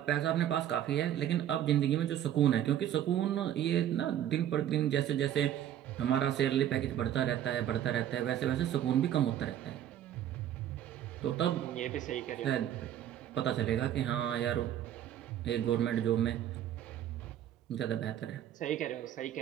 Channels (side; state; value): left; quieter; 11.0 dB